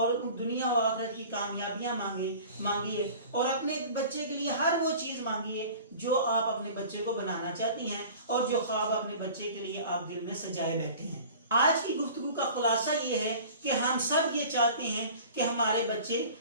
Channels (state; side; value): inverted; both; correlation -0.42